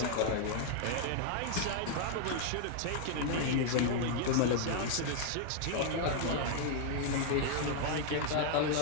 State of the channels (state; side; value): different; both; correlation 0.00